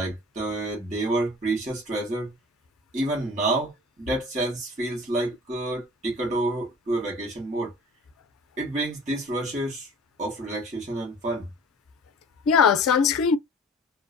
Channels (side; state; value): both; normal; correlation 0.44